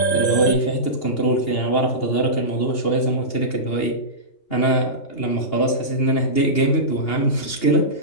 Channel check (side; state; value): right; late; 2.8 ms